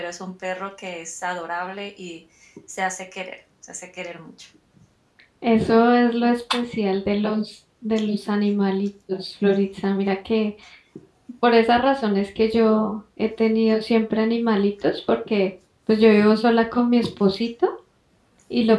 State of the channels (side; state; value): both; identical; correlation 1.00